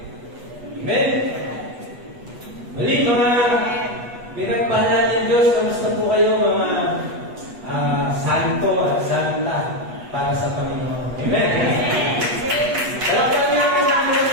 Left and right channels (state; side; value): late; left; 8.2 ms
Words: Amen. Muli mga pinagpahala ng Diyos, kamusta po kayo mga santo at santa para sa Panginoon. Amen.